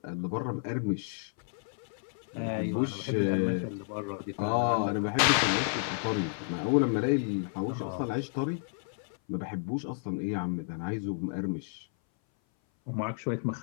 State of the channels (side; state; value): right; silent; 57 dB below the other